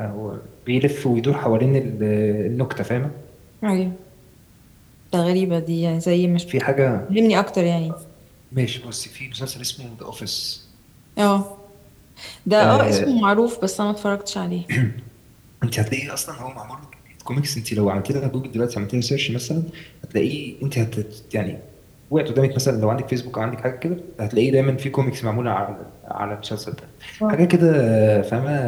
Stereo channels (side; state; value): both; identical; correlation 1.00